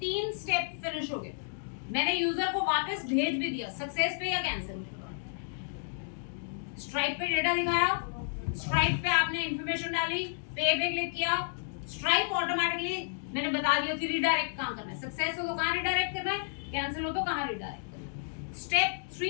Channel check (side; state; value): right; silent; digital silence